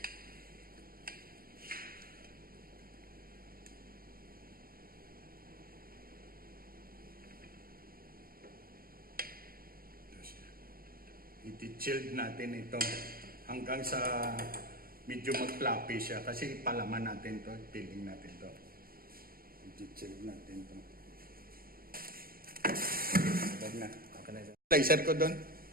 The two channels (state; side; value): late; left; 0.43 ms